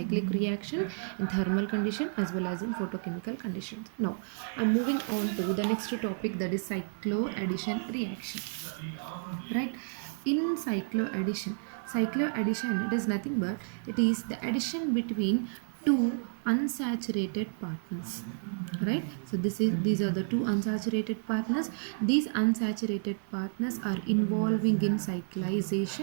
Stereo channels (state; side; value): silent; left; 57 dB below the other